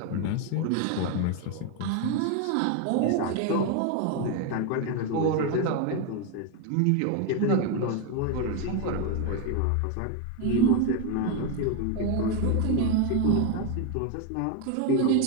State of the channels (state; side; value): different; both; correlation 0.02